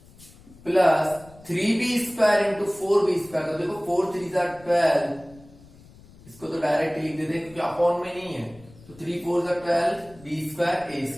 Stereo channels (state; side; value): noise; left; rumble, 23 dB below the sound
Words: plus 3b² into 4b²। तो देखो 4 3 12, इसको तो डायरेक्ट लिख देते क्योंकि अपॉन में नहीं है, तो 3 4 12, b²